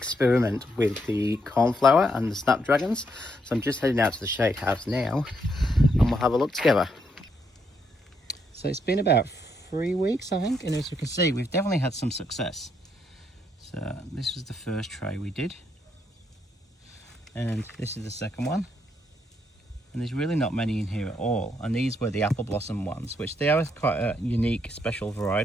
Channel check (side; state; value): both; normal; correlation 0.76